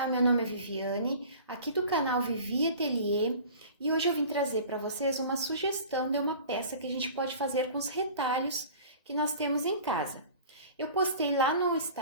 meu nome é Viviane, aqui do canal Vivi Atelier, e hoje eu vim trazer para vocês uma sugestão de uma peça que a gente pode fazer com os retalhos que nós temos em casa. Eu postei lá no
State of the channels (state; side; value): inverted; both; correlation -0.42